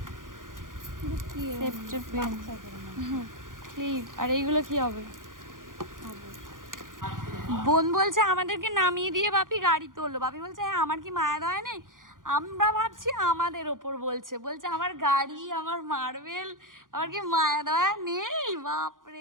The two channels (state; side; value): late; left; 0.89 ms